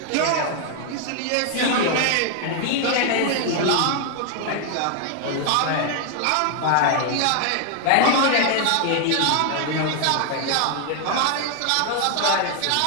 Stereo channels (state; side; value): different; both; correlation 0.00